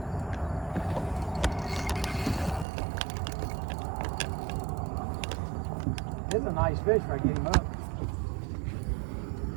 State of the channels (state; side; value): drops out; left; at 2.7 s